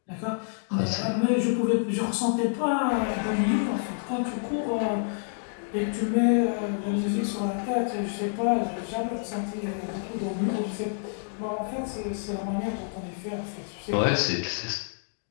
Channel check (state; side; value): silent; right; digital silence